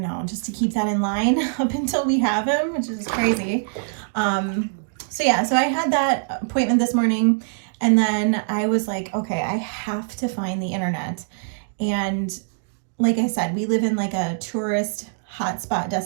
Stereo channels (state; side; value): silent; left; digital silence